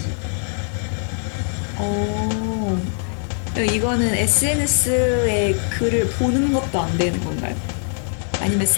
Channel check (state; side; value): silent; right; 65 dB below the other